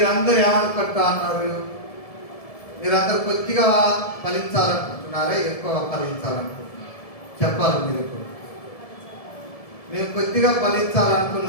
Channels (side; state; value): right; late; 1.7 ms